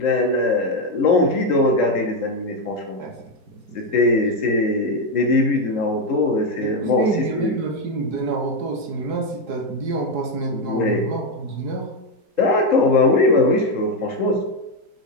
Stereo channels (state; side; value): late; left; 4.7 ms